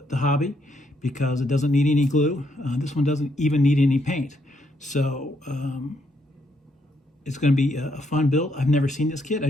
hobby, because it doesn't need any glue. This one doesn't even need any paint. So it's going to be a fun build. I've never seen this kit. I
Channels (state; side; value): normal; both; correlation 0.75